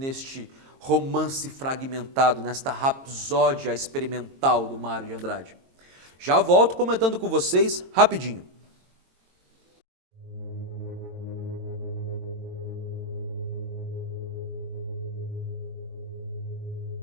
romance fragmentado, nesta rapsódia experimental do Mário de Andrade? Já volto comentando com vocês rapidinho.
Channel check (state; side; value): late; left; 22 ms